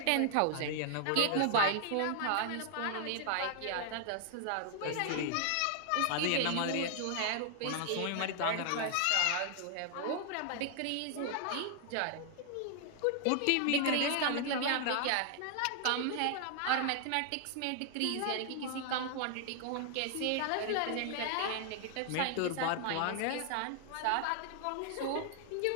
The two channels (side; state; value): both; different; correlation 0.00